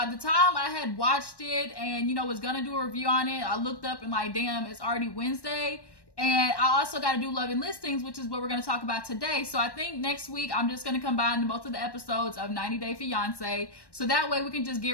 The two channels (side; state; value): right; late; 1.1 ms